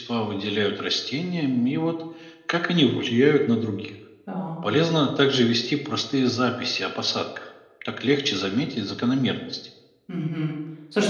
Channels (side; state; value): both; identical; correlation 1.00